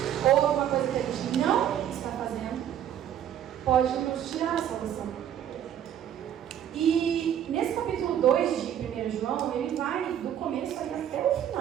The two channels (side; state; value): left; quieter; 10.2 dB